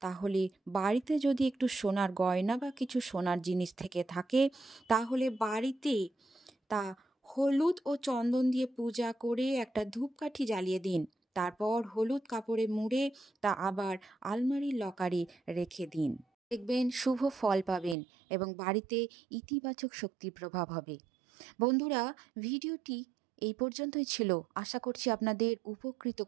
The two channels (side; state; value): left; drops out; at 17.9 s